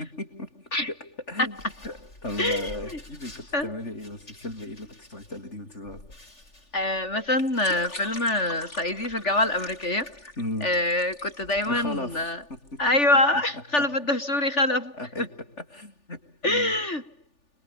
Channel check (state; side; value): late; right; 3.4 ms